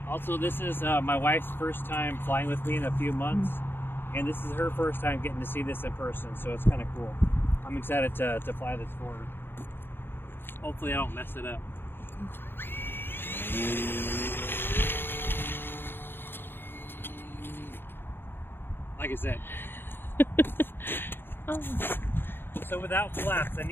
Also, this is my wife's first time flying with me in a few months, and this is her first time getting to see this in person, so it's kind of cool. I'm excited to fly this for her. Hopefully I don't mess it up. Like I said. So without flaps, I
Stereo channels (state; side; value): late; right; 0.10 ms